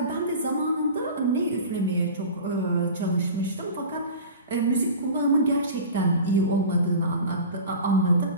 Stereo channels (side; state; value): both; inverted; correlation -0.35